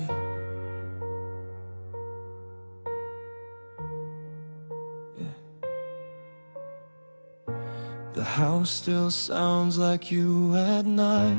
Yeah. The house still sounds like you at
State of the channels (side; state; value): both; inverted; correlation -1.00